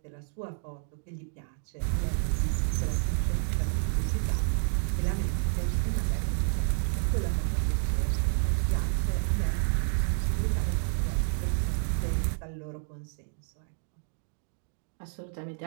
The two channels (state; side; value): silent; left; 58 dB below the other